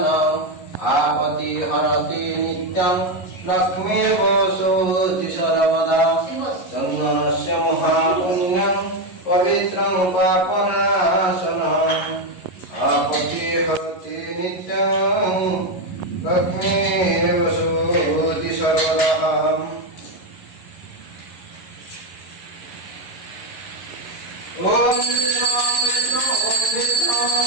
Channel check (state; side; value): late; right; 11 ms